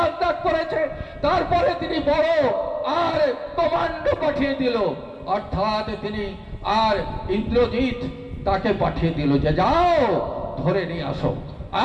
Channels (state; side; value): identical; both; correlation 1.00